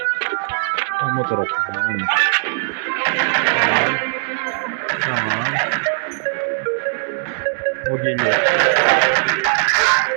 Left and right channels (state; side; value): silent; left; digital silence